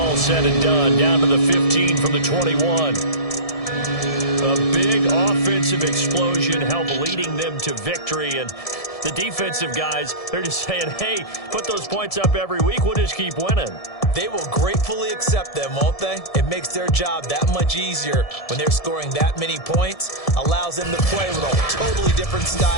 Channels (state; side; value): late; right; 1.7 ms